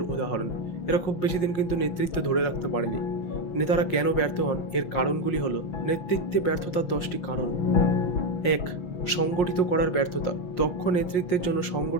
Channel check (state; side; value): late; right; 5.6 ms